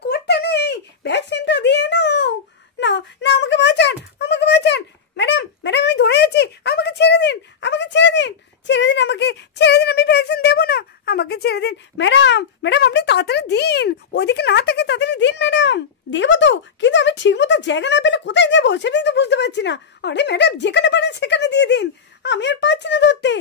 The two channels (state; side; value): quieter; right; 6.4 dB